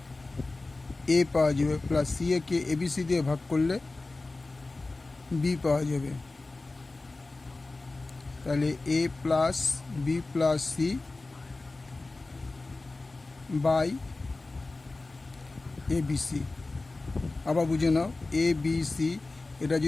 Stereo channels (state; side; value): quieter; right; 3.3 dB